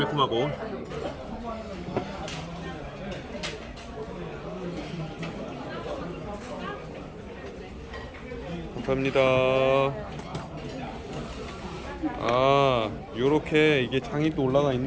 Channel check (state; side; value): identical; both; correlation 1.00